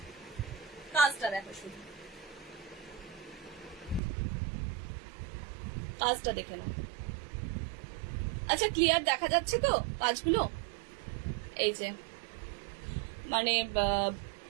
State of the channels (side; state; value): left; drops out; at 4.0 s